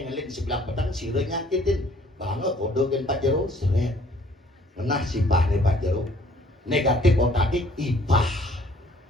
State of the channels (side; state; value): both; normal; correlation 0.59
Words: ngeling sebelah peteng sire nyakitin banget kodogen Pak Jero seret menah simpah nih Pak Jero negatif otakik ipah